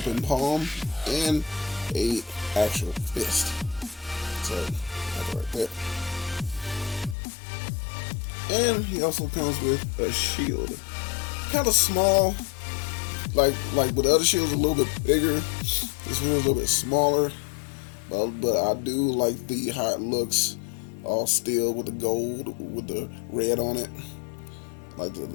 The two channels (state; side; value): drops out; right; at 7.2 s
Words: palm, and a actual fist. So that's right there. And he also comes with a shield, kind of small, like with the other shields, a little bit bigger. This one is a little bit smaller, but I do like how it looks, all steel with the gold with the red on it. Like the